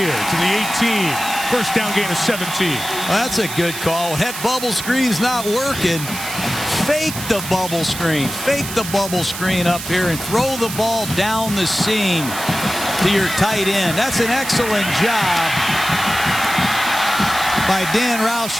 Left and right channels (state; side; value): noise; right; hiss, 8 dB below the sound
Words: to the 18. First down gain of 17. Well, that's a good call. That bubble screen's not working. Fake the bubble screen. Fake the bubble screen up here and throw the ball down the seam to your tight end. That's an excellent job by Dan